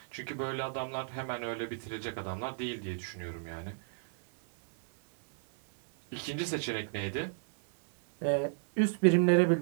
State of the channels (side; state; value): left; silent; 56 dB below the other